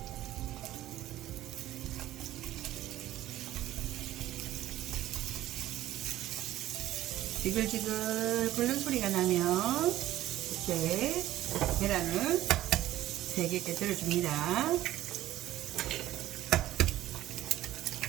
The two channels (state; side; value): quieter; left; 14.4 dB